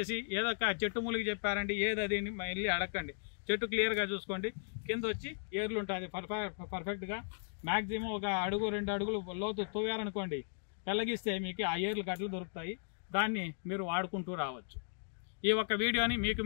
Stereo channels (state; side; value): silent; right; digital silence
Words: ఏదొక చెట్టు మూలికి చెప్పారండి ఏది అది వెళ్ళి అడగండి. చెట్టు క్లియర్గా చూసుకోండి, కింద వచ్చి ఏర్లు ఉంటుంది పర్ఫెక్ట్గా. మ్యాక్సిమం ఒక అడుగు 2 అడుగులు లోతు తవ్వారనుకోండి, పెళ్ళగిస్తే మీకు ఆ ఏర్లు గట్లు దొరుకుతాయి. దాన్ని మీరు వాడుకుంటూ రావచ్చు. ఈ ఒక్క వీడియోని మీకు